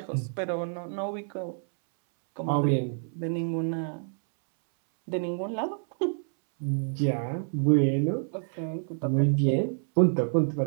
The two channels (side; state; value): left; silent; 59 dB below the other